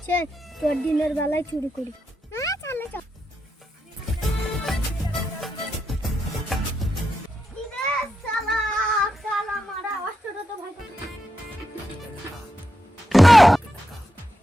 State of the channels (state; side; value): normal; both; correlation 0.85